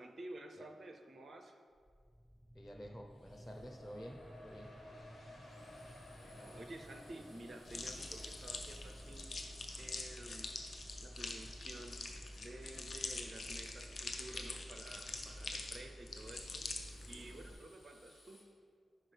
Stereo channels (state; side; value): normal; both; correlation 0.91